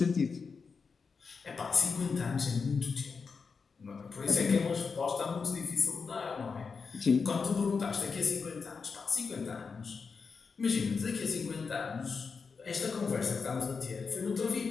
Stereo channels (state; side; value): quieter; right; 5.2 dB